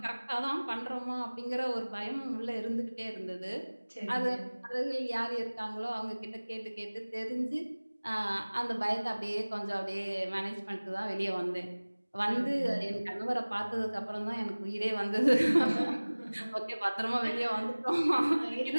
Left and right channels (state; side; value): inverted; both; correlation -1.00